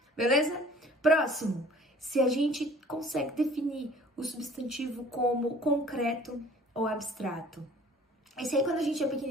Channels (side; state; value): both; normal; correlation 0.51